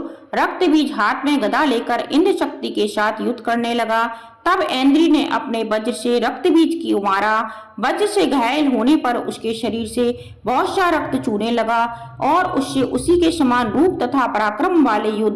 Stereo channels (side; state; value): both; identical; correlation 1.00